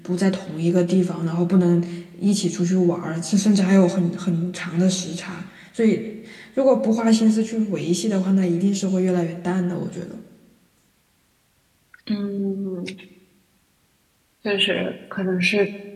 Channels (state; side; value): identical; both; correlation 1.00